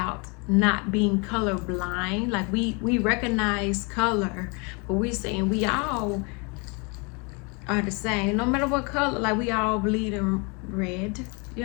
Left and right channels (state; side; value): quieter; right; 32.0 dB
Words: not being colorblind. Like, we recognize color, but we saying we all are the same, no matter what color. Like, we all bleed in red,